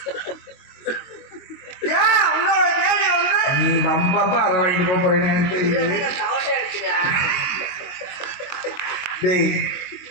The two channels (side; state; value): right; late; 22 ms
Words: ஏன் உங்களோட கேள்வி வந்து நீ வம்பப்பா அரை வாங்கிட்டு போறேன்னு எனக்கு தெரியுது. சவுண்டே அடிக்கிறியா? டேய்